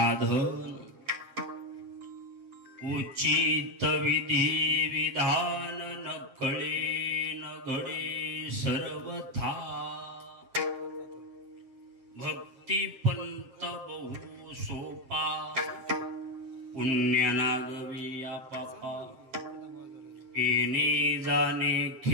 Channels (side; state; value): left; late; 7.7 ms